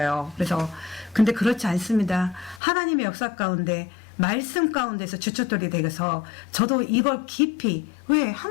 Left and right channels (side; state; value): right; drops out; at 2.6 s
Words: 그래서, 근데 그렇지 않습니다. 하나님의 역사 가운데, 말씀 가운데서 주춧돌이 되어서 저도 이걸 깊이, 왜?